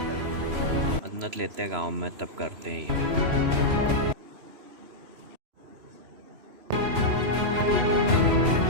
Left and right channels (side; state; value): left; late; 3.0 ms